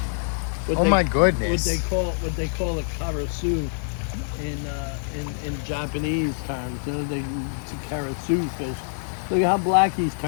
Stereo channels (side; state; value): right; silent; digital silence